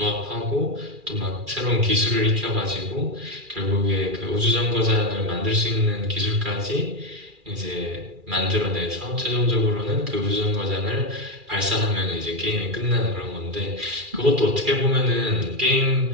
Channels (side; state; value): left; late; 2.4 ms